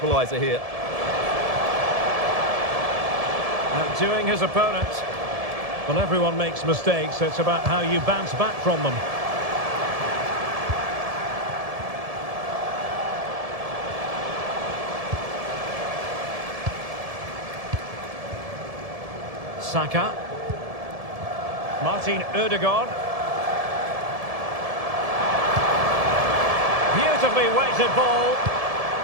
here? Outdoing his opponent. Well, everyone makes mistakes. It's about how you bounce back from them. Saka. Martin Ødegaard. Beautifully weighted ball.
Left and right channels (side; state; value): left; late; 1.7 ms